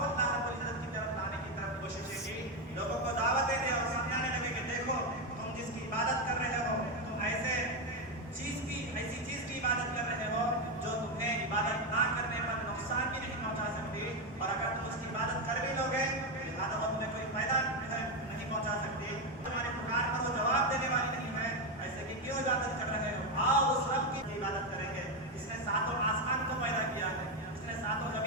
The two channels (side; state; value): both; normal; correlation 0.08